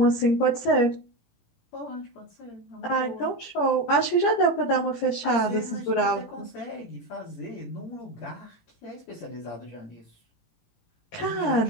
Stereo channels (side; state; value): right; late; 17 ms